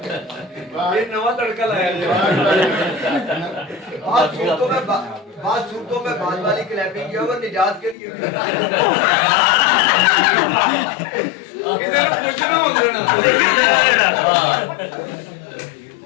ये नवा तड़का लाया बात सूरतों में बाद वाली क्लैपिंग किया वो निजात के लिए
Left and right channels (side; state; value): right; drops out; at 8.0 s